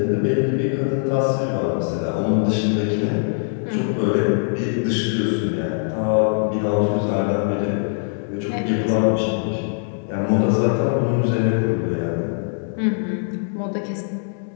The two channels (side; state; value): right; silent; 64 dB below the other